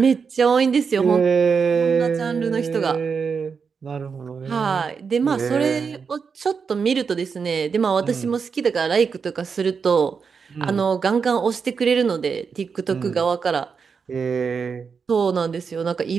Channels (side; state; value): left; quieter; 5.8 dB